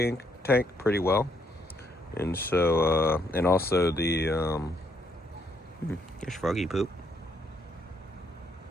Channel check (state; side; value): normal; both; correlation 0.72